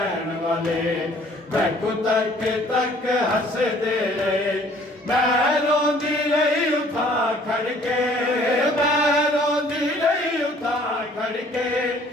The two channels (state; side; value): normal; both; correlation 0.57